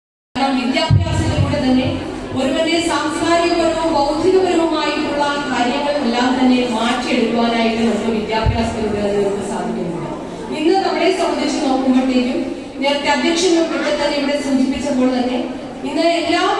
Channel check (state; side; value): identical; both; correlation 1.00